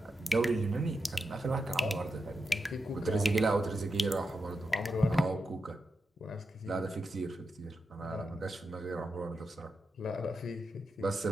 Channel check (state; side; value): normal; both; correlation 0.87